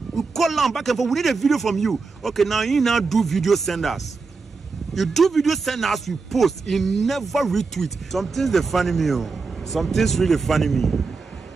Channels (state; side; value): quieter; left; 4.4 dB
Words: We call them back and forth. We need a video from you. Okay, now you now do video, send us. You do video, send us. We post. You never retweet. Something's the funny me. Something's really funny me.